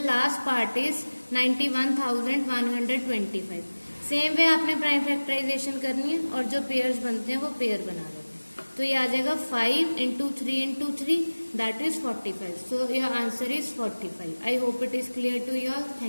last part is 91,125. Same way आपने प्राइम फैक्टराइजेशन करनी है और जो पेयर्स बनते हैं वो पेयर बना लेते हैं. तो ये आ जाएगा 5 into 3 into 3, that is 45. So your answer is 45. I hope it is clear to you all.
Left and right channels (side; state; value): both; inverted; correlation -1.00